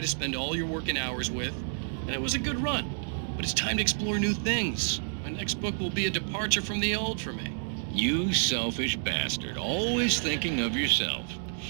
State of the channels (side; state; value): left; silent; digital silence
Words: to spend all your working hours with, and it was a good run. But it's time to explore new things. My next book will be a departure from the old for me. You selfish bastard, always thinking of yourself.